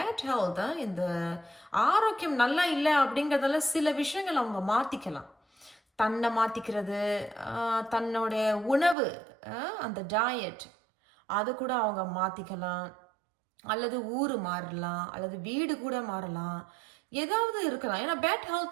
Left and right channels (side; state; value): left; drops out; at 9.0 s